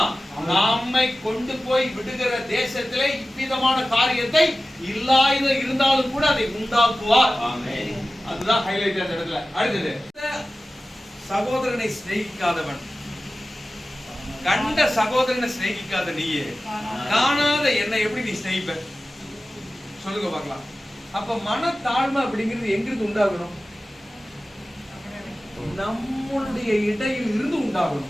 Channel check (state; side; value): normal; both; correlation 0.96